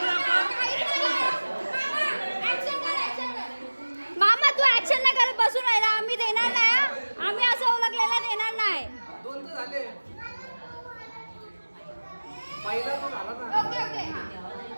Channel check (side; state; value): both; inverted; correlation -1.00